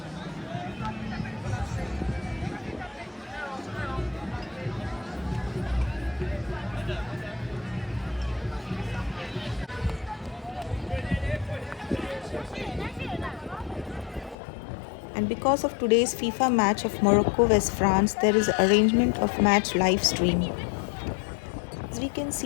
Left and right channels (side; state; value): right; drops out; at 14.4 s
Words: And because of today's FIFA match of Morocco vs France, there is arrangement of match live stream. As we can